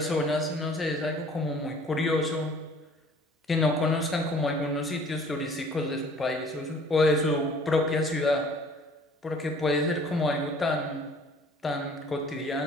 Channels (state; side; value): normal; both; correlation 0.52